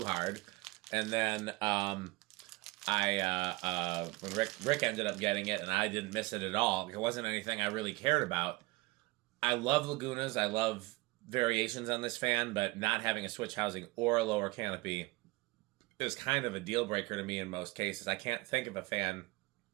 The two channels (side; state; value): left; quieter; 22.8 dB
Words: hard. And then when Rick ended up getting it, and I didn't miss it at all. It wasn't anything I really cared about. I love Lagunas. I love variations on this fan, but not having a switch housing or a lower canopy is kind of a deal breaker to me in most cases. I can't think of a fan.